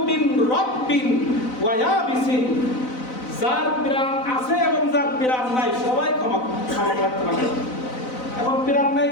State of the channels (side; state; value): right; late; 4.0 ms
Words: মিন রাব্বিন ওয়া ইয়াবিসিন, যার প্রাণ আছে এবং যার প্রাণ নাই সবাই ক্ষমা প্রার্থনা করে। এখন প্রাণ নাই